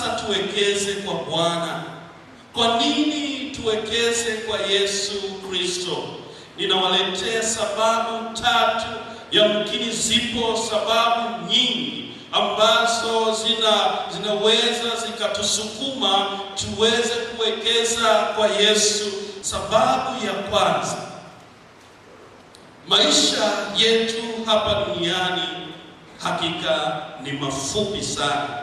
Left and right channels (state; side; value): identical; both; correlation 1.00